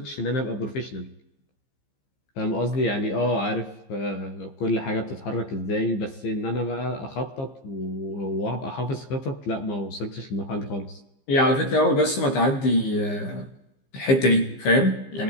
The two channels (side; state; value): right; late; 15 ms